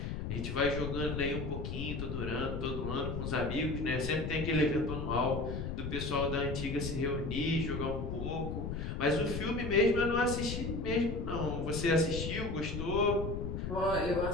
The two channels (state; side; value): noise; left; rumble, 4 dB below the sound